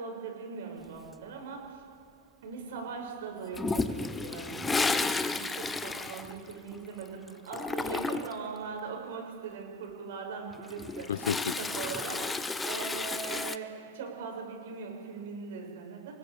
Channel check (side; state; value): both; normal; correlation 0.48